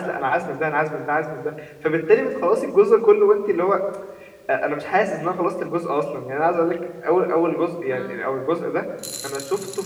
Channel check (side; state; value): both; identical; correlation 1.00